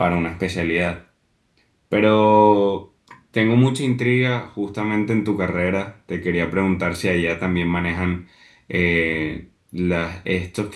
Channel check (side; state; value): both; identical; correlation 1.00